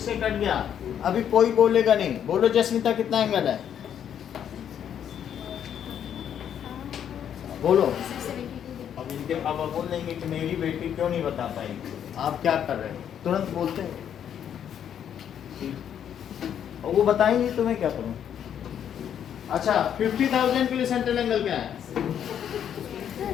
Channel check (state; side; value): quieter; right; 9.2 dB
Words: कट गया। अभी कोई बोलेगा नहीं। बोलो जस्मिता कितना एंगल है? बोलो। अब इनके पापा बोल देंगे कि मेरी बेटी क्यों नहीं बता पाई, आप क्या कर रहे हो? तुरंत बोलते हैं और वो बताएंगे तो मैं क्या करूं? अच्छा 50,000 के लिए सेंट्रल एंगल क्या है?